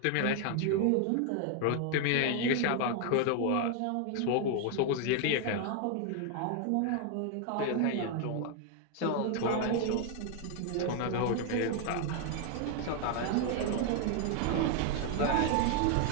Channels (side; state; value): both; different; correlation 0.00